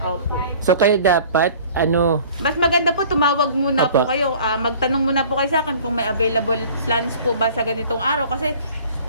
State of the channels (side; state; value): both; inverted; correlation -0.48